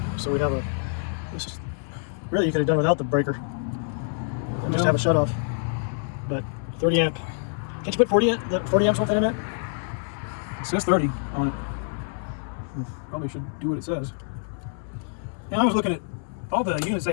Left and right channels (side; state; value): right; silent; digital silence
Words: So we'd have a. This is, really, you could have done without the breaker. And just have a shut off. But 30 amp. Can't you put 40 amps worth in it? It says 30 on it. Probably should do what it says. And I was looking at all the units they